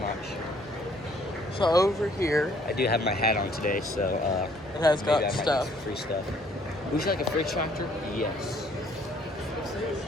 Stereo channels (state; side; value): normal; both; correlation 0.62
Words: not sure. So over here, I do have my hat on today, so it has got stuff. Free stuff. Would you like a fridge tractor? Yes.